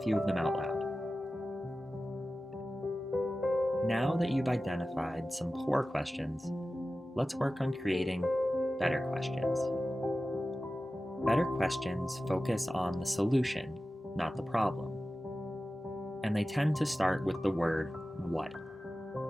of them out loud. Now that you've identified some poor questions, let's work on creating better questions. Better questions focus on the solution, not the problem. And they tend to start with the word what.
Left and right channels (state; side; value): normal; both; correlation 0.95